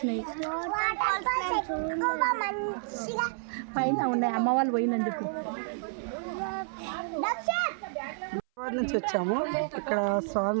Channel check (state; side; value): silent; left; 58 dB below the other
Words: పైన ఉన్నాయి. అమ్మ వాళ్ళు పోయిందని చెప్పు. హైదరాబాద్ నుంచి వచ్చాము. ఇక్కడ